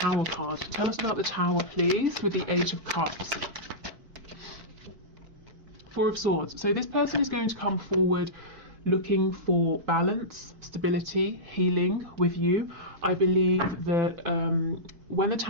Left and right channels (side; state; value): left; late; 4.5 ms